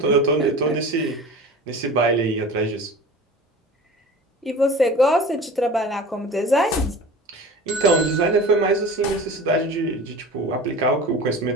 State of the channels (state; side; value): normal; both; correlation 0.37